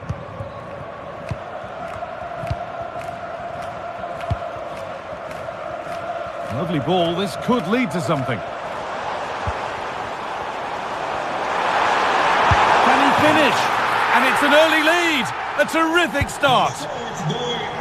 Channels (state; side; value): identical; both; correlation 1.00